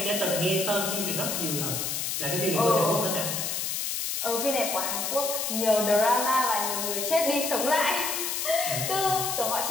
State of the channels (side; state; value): left; noise; hiss, 1 dB below the sound